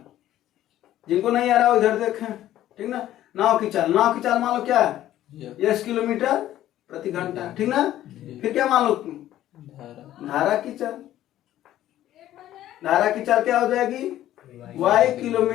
जिनको नहीं आ रहा वो इधर देखें, ठीक ना? नाव की चाल मान लो क्या? 10 किलोमीटर प्रति घंटा, ठीक ना? फिर क्या मान लो? धारा की चाल, धारा की चाल क्या हो जाएगी? y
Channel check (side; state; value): right; quieter; 13.1 dB